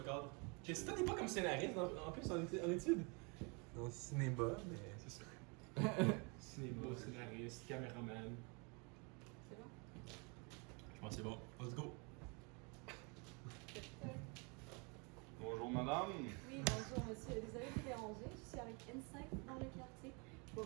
cadre. Si toi t'es pas comme scénariste en plus en études. Dans le cinéma, mais. C'est ça. Cinéma, scénariste, caméraman. C'est bon? Je pense que c'est bon. Let's go. Bonjour, madame. Oui, bonjour monsieur. Désolée de vous déranger. Je suis avec Insight dans le quartier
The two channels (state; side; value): quieter; left; 32.4 dB